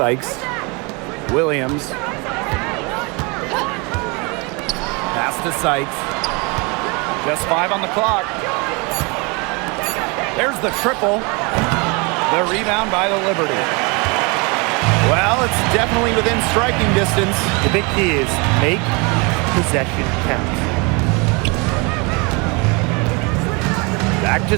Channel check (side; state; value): left; quieter; 29.5 dB